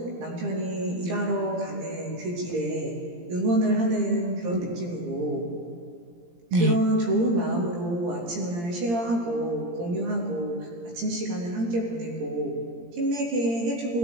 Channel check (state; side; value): late; left; 17 ms